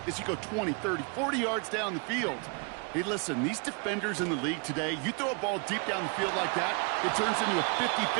as you go 20, 30, 40 yards down the field. Hey, listen, these defenders in the league today, you throw a ball deep down the field like that, it turns into a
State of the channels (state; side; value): quieter; left; 34.7 dB